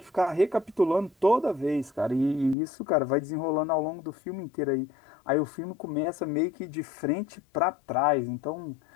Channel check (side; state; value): right; drops out; at 2.6 s